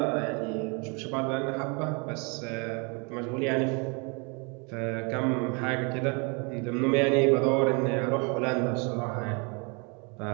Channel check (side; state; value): left; quieter; 32.7 dB